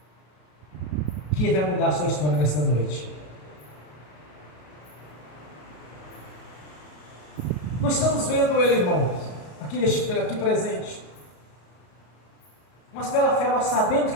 que vai mudar a sua história nesta noite. Nós estamos vendo Ele, irmãos, aqui presente, mas pela fé nós sabemos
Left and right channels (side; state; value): right; late; 33 ms